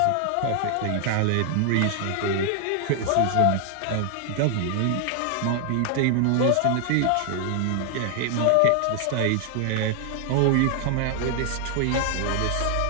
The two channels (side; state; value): both; different; correlation 0.00